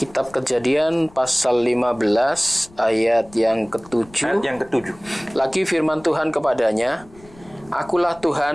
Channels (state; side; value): noise; left; rumble, 24 dB below the sound